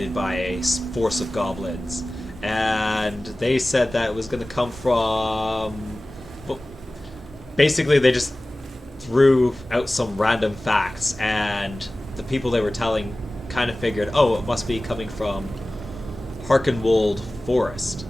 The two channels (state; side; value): normal; both; correlation 0.97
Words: by a force of goblins, and they said that it was going to come from... Well, basically, they just threw out some random facts, and the people they were telling kind of figured, oh, it must be coming from Harkenwold Forest.